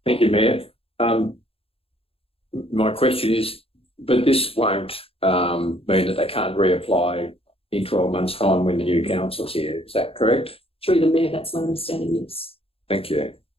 Thank you, Mayor. My question is, but this won't mean that they can't reapply in 12 months' time when the new council's here, is that correct? Through the mayor, that's my understanding, yes. Thank you.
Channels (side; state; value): right; late; 0.27 ms